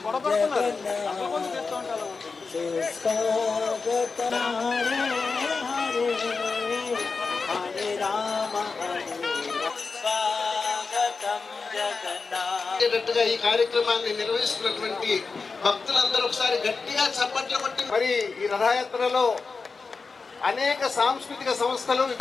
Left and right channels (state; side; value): quieter; right; 4.5 dB